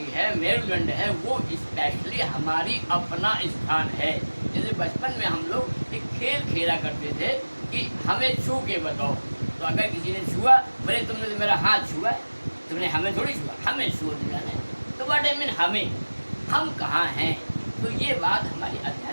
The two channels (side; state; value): both; inverted; correlation -1.00